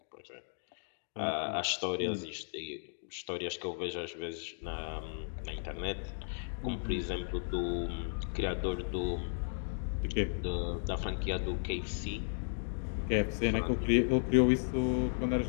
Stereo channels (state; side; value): silent; right; digital silence